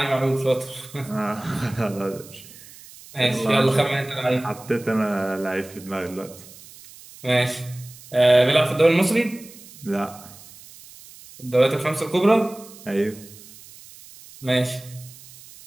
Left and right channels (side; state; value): right; noise; hiss, 20 dB below the sound